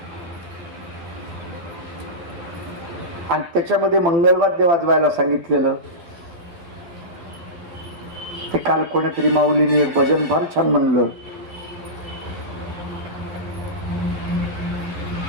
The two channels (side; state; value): left; late; 12 ms